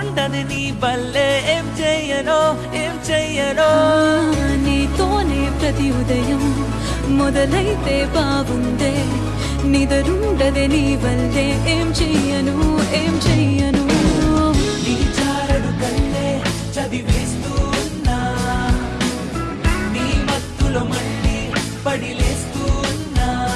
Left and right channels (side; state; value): both; identical; correlation 1.00